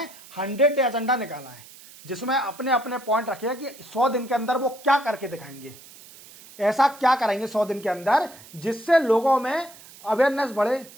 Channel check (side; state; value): right; noise; hiss, 20 dB below the sound